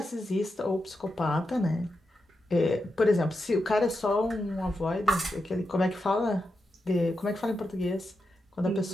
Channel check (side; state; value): both; normal; correlation 0.87